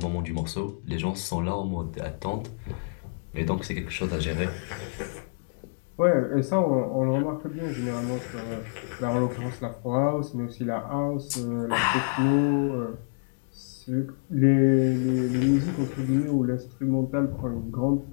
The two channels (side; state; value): right; silent; digital silence